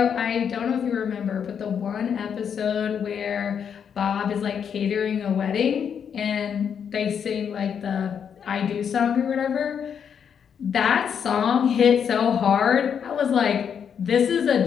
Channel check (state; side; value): quieter; right; 7.6 dB